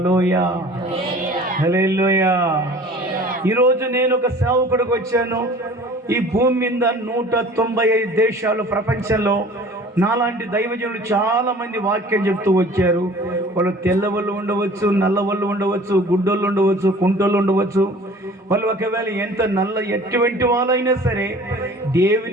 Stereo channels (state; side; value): normal; both; correlation 0.46